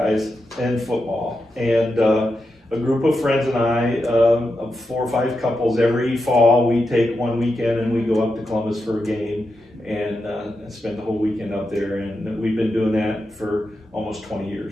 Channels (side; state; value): both; normal; correlation 0.87